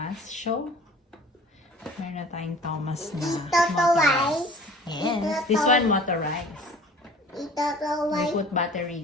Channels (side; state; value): both; normal; correlation 0.46